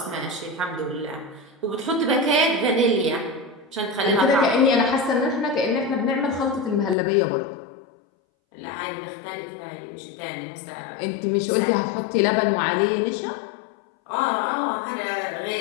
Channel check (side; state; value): right; drops out; at 7.0 s